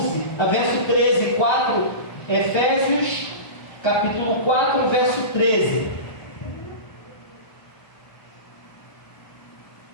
a verso 13, 4, Efésios, capítulo 4, verso 13.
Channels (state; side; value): late; right; 1.3 ms